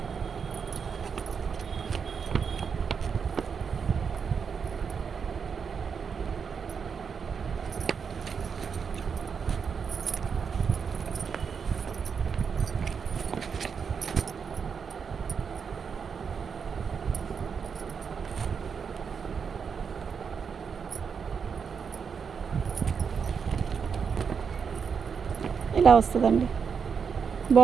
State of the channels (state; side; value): quieter; left; 6.3 dB